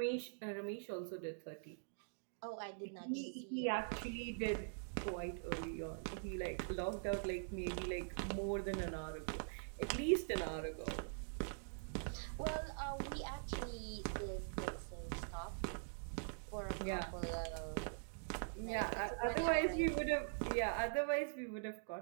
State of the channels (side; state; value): left; silent; digital silence